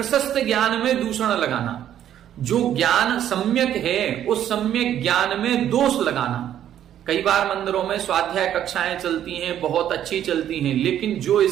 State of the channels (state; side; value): quieter; left; 10.8 dB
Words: ज्ञान में दूषण लगाना। जो ज्ञान सम्यक है उस सम्यक ज्ञान में दोष लगाना। कई बार मंदिरों में स्वाध्याय कक्षाएं चलती हैं, बहुत अच्छी चलती हैं, लेकिन जो